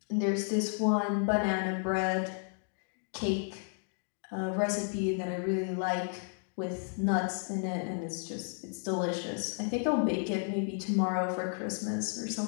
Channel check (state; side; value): silent; right; 56 dB below the other